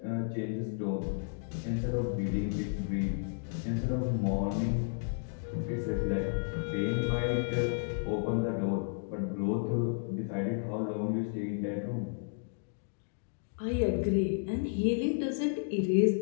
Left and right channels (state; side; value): silent; right; digital silence